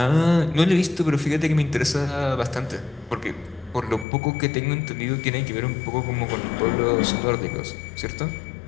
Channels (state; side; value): drops out; right; at 4.0 s